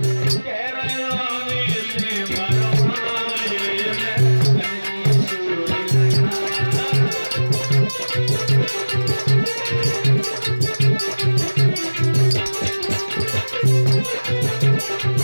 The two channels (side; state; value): both; inverted; correlation -1.00